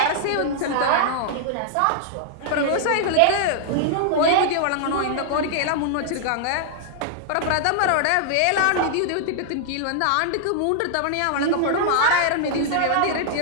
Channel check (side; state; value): both; different; correlation -0.01